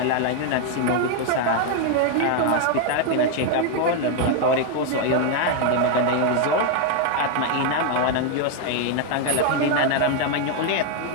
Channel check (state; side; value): different; both; correlation 0.01